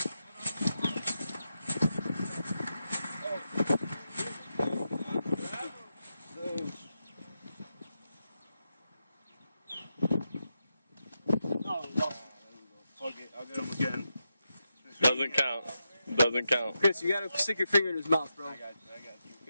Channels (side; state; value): both; inverted; correlation -0.87